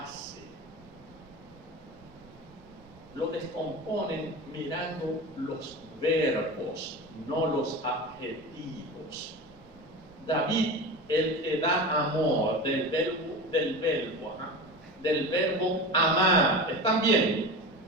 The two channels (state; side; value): noise; right; rumble, 26 dB below the sound